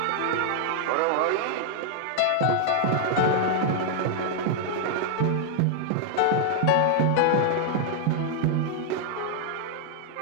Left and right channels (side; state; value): both; different; correlation -0.01